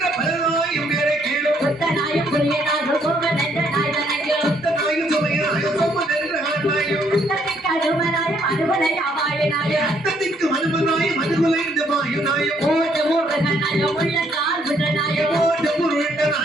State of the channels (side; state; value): both; normal; correlation 0.69